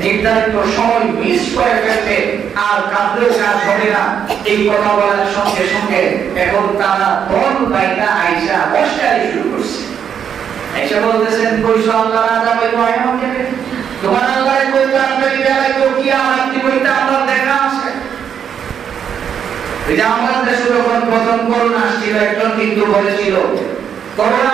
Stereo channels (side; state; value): left; quieter; 8.1 dB